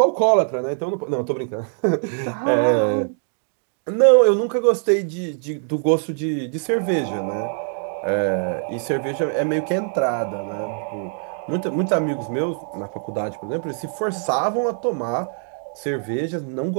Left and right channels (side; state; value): left; silent; 60 dB below the other